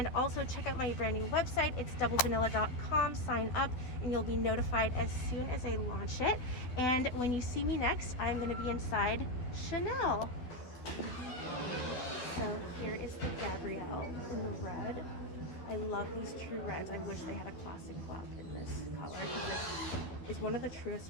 also check out my brand new website. It's doublevanilla.com. Sign up and you'll be notified as soon as I launch it. And when you see me next, I'm going to be inside Chanel. So here is the Gabrielle in the red. I love these true reds. I wish they had a classic flap in this color, because this is one of the truest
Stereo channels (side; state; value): right; late; 12 ms